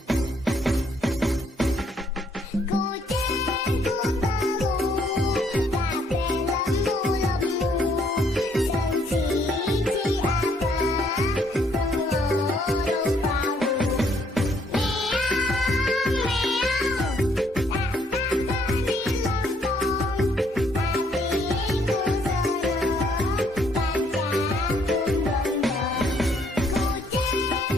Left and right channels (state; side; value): normal; both; correlation 0.68